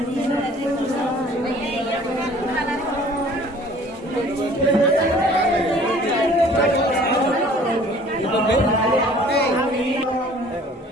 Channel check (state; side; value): normal; both; correlation 0.52